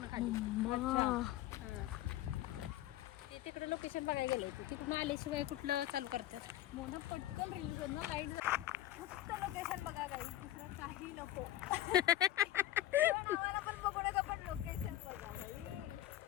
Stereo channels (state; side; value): quieter; right; 13.8 dB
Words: खाली. ते तिकडे लोकेशन बघायला गेलंय. तिकडून आल्याशिवाय कुठलं चालू करतात. मोना पटकन रील करणं लाईट. फक्त लोकेशन बघा काही दुसरं काही नको. आम्हाला पण बघण्याचं पण लोकेशन बघा.